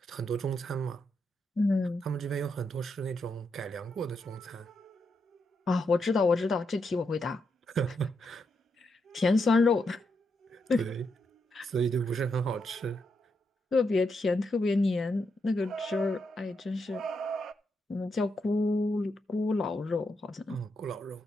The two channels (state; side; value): normal; both; correlation 0.82